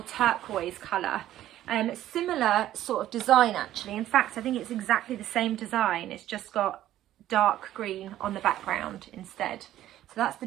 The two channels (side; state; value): left; quieter; 13.1 dB